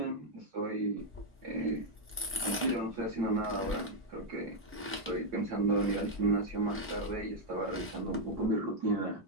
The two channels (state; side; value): normal; both; correlation 0.00